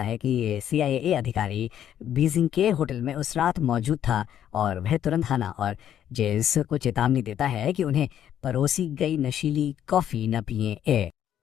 है कि CIA अधिकारी बीजिंग के होटल में उस रात मौजूद था और वह तुरंत हाना और जेस को चेतावनी देता है कि उन्हें परोसी गई नशीली कॉफी न पिए।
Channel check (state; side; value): quieter; right; 10.3 dB